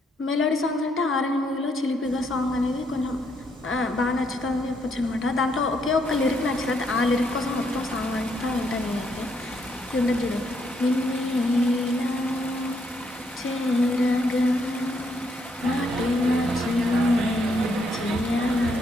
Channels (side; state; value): both; normal; correlation 0.74